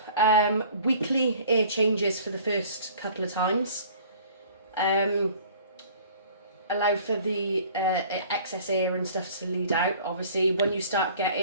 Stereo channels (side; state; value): both; inverted; correlation -0.50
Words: weekly air changes for the first couple of times. Allow for the excess air and stuff to lead out. Obviously when you start